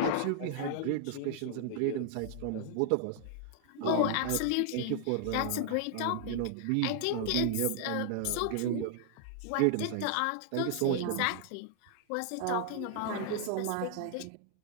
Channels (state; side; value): different; both; correlation 0.00